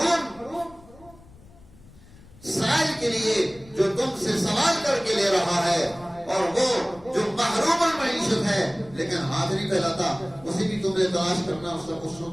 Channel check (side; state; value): left; noise; rumble, 23 dB below the sound